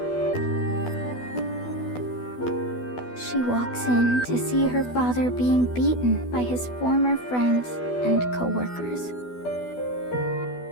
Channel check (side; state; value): right; late; 12 ms